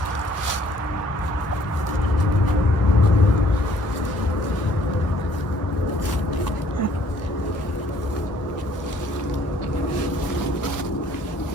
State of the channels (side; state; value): right; late; 1.4 ms